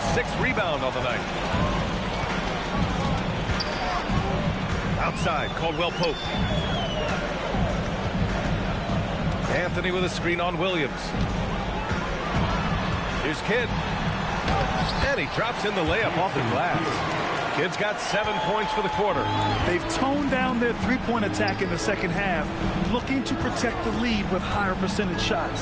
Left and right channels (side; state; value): both; identical; correlation 1.00